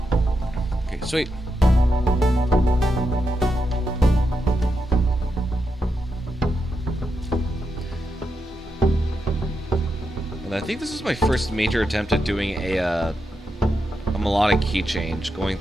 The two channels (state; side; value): normal; both; correlation 0.85